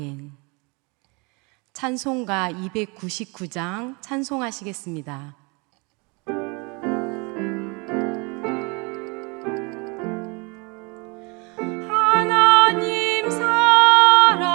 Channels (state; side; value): quieter; left; 30.0 dB